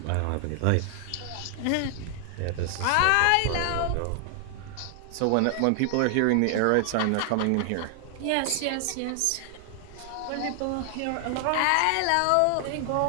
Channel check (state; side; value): different; both; correlation 0.00